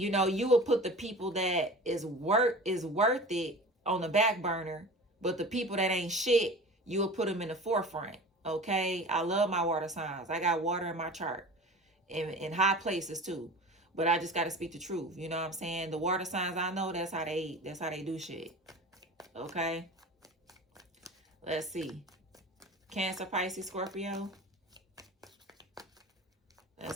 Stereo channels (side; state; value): both; normal; correlation 0.37